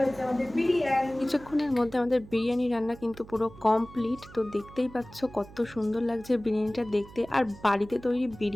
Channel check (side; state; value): right; noise; hum, 19 dB below the sound